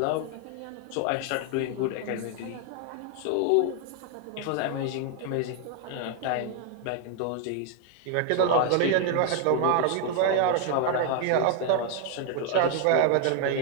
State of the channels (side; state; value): both; different; correlation 0.00